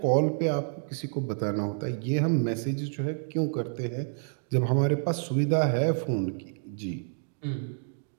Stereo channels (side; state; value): left; silent; digital silence